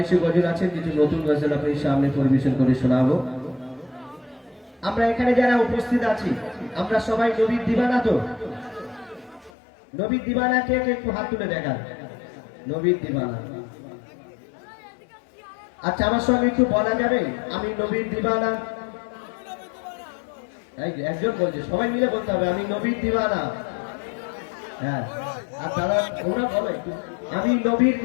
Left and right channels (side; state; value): right; drops out; at 9.5 s